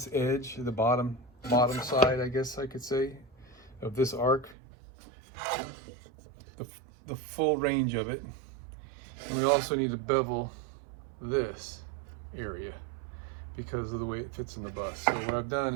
edge, the bottom side, I guess I could say, of this arc, the full range of it. And we also need to bevel this area because of the way it fits in the bus. So what I've done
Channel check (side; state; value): left; drops out; at 4.5 s